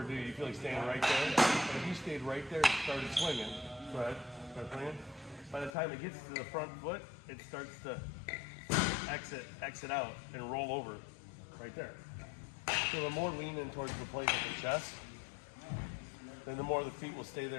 do you? You feel like staying right there. But if you stayed right there and started swinging, go ahead, start swinging. By the time it gets to the front foot, it starts to exit out and roll over right there. So the more lean in towards the plate with the chest, then the more the feet will stay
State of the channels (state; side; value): drops out; right; at 5.7 s